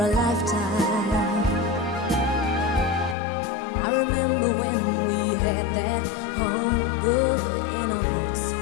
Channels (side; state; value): right; drops out; at 3.2 s